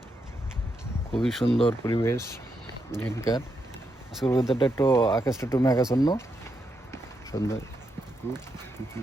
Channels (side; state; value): both; normal; correlation 0.82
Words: খুবই সুন্দর পরিবেশ এখানকার। আজকের ওয়েদারটা একটু, আকাশটা একটু মেঘাচ্ছন্ন, সুন্দর।